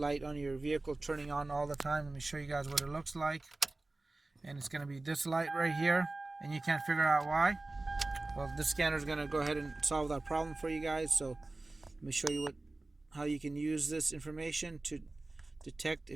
on your vehicle turning on all the time. Let me show you guys what it looks like. And it's going to be this light right here, and you can't figure out why. Well, this scanner is going to go ahead and solve that problem for you guys. So let me show you how you can use this information to detect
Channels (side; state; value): left; quieter; 3.1 dB